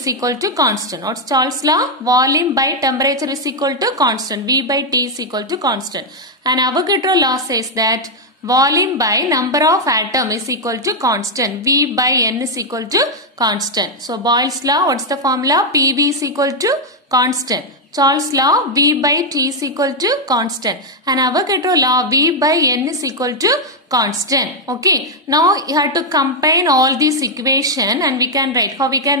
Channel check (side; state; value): both; normal; correlation 0.00